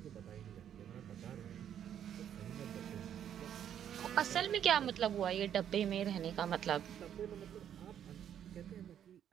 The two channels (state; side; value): quieter; left; 9.7 dB